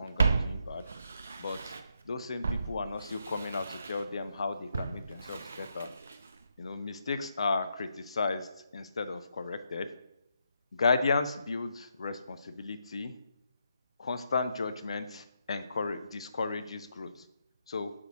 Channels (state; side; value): inverted; both; correlation -0.79